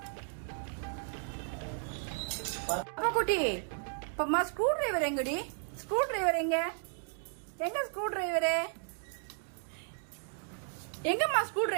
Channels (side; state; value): left; silent; 55 dB below the other